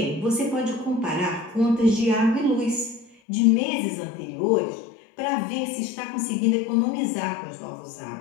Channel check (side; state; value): right; drops out; at 3.2 s